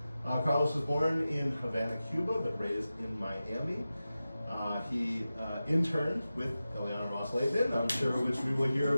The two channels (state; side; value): inverted; both; correlation -0.94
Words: Carlos was born in Havana, Cuba, but raised in Miami. He interned with Ileana Ros-Lehtinen, I'm sure, which we will hear